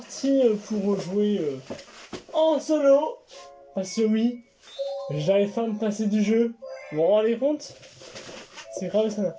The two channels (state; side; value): identical; both; correlation 1.00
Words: pour jouer en solo. Parce que oui, j'arrive pas à me passer du jeu. Vous vous rendez compte? C'est grave ça.